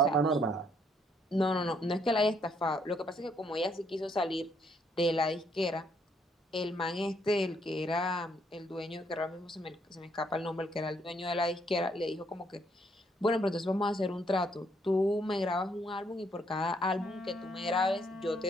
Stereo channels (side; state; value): both; normal; correlation 0.70